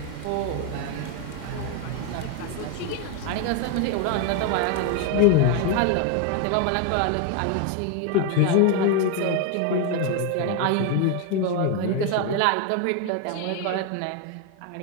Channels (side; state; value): both; different; correlation 0.01